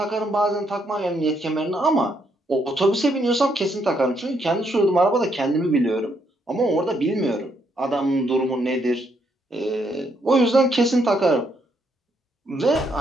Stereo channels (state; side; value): normal; both; correlation 0.74